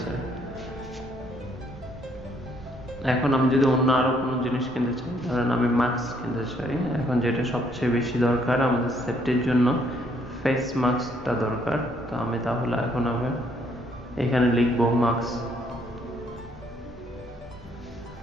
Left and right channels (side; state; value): both; normal; correlation 0.68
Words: এখন আমি যদি অন্য আরো কোনো জিনিস কিনতে চাই, ধরেন আমি মাস্ক কিনতে চাই, এখন যেটা সবচেয়ে বেশি দরকার আমাদের সেফটির জন্য ফেস মাস্কটা দরকার। তো আমি তাহলে এখন আমি এখানে লিখবো